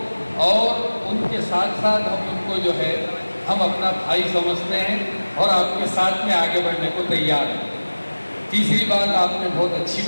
और उनके साथ साथ हम उनको जो है हम अपना भाई समझते हैं और आपके साथ में आगे बढ़ने को तैयार हैं। तीसरी बात आपने बहुत अच्छी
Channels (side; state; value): both; inverted; correlation -1.00